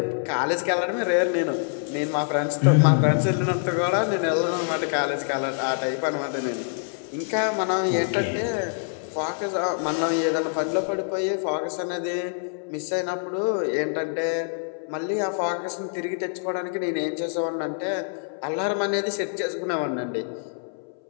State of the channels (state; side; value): silent; right; 60 dB below the other